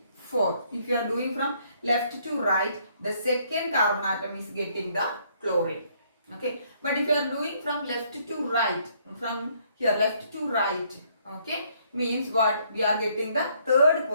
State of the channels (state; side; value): inverted; both; correlation -0.67